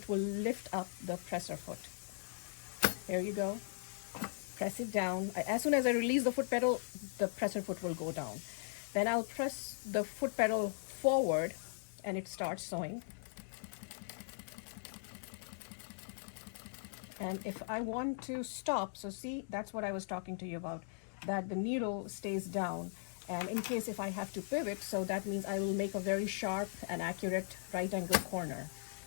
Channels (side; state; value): right; silent; digital silence